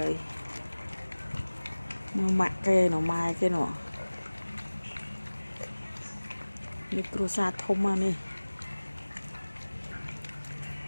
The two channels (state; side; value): inverted; both; correlation -1.00